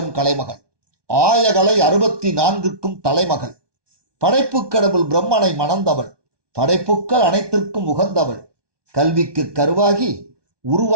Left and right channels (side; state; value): left; late; 1.2 ms